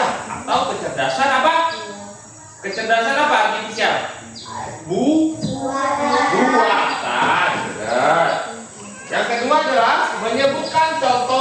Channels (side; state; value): both; identical; correlation 1.00